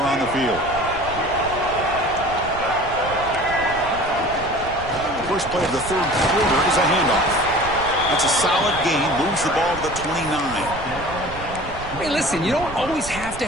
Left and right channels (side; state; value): right; noise; rumble, 13 dB below the sound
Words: the field. First play of the 3rd quarter is a handoff. That's a solid gain. Moves the ball to the 29. Hey, listen, you don't always have to